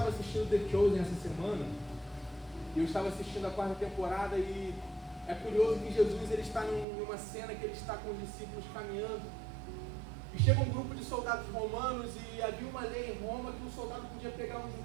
assistindo The Chosen essa semana, e eu estava assistindo a 4ª temporada, e é curioso que Jesus ele está numa cena que ele está com os discípulos caminhando, e chega um grupo de soldados romanos, e havia uma lei em Roma que um soldado podia pegar um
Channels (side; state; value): left; drops out; at 6.9 s